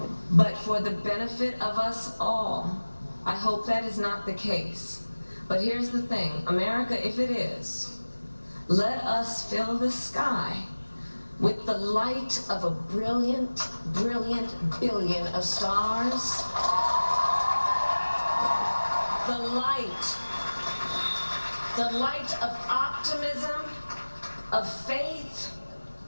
but for the benefit of us all, I hope that is not the case. But here's the thing, America, if it is, let us fill the sky with the light of a brilliant, brilliant billion of stars. The light of optimism, of faith,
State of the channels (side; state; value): both; inverted; correlation -1.00